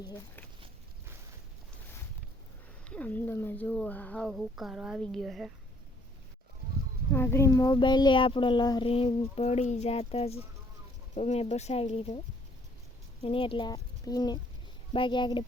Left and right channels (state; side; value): normal; both; correlation 0.63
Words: છે. આમ તમે જુઓ હાવ હુકારો આવી ગયો છે. આગળ મોબાઈલે આપણો લહરી પડી જાત જ તો મેં બસાવી લીધો એને, એટલે પીને બાકી આગળ